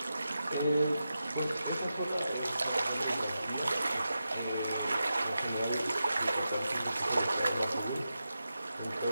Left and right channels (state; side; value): inverted; both; correlation -0.90